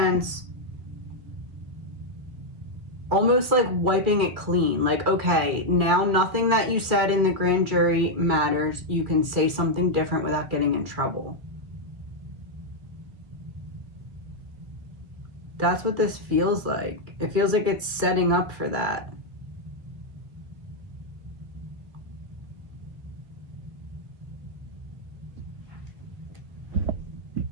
almost like wiping it clean. Like, okay, now nothing that you said in the grand jury matters. You can say something different without getting in trouble. That's what this feels like. It feels like it's setting up for that.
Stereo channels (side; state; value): left; late; 2.3 ms